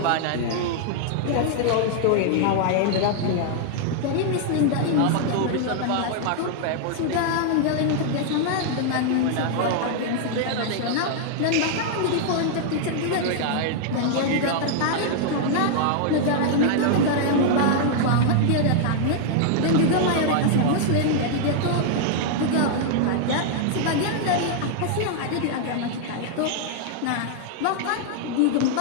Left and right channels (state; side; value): different; both; correlation -0.01